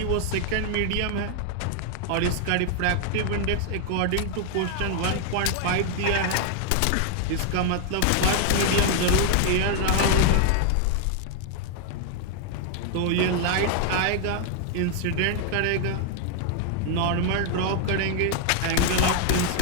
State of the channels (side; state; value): both; different; correlation 0.00